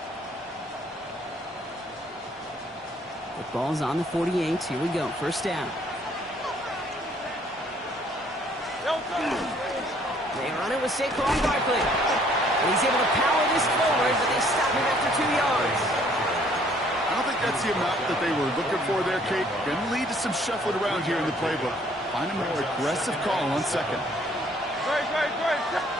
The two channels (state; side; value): normal; both; correlation 0.62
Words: The ball's on the 48. Here we go. First down. They run it with Saquon Barkley. And he's able to power this forward, but they stop him after 2 yards. I don't think that's the amount that they were looking for there, Kate. Going to lead to some shuffling around here in the playbook. Find a more aggressive call on second.